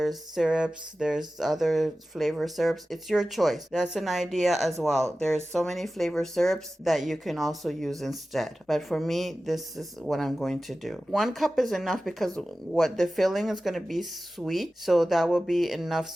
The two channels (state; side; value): normal; both; correlation 0.95